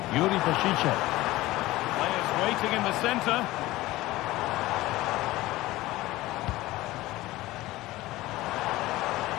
Yuri Pashicha. Players waiting in the centre.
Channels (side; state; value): right; quieter; 17.9 dB